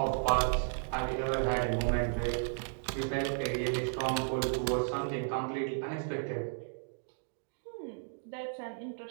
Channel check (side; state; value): left; silent; digital silence